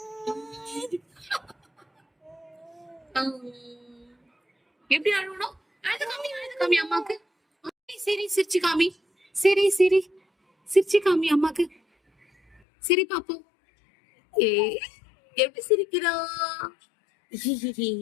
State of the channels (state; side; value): drops out; right; at 12.6 s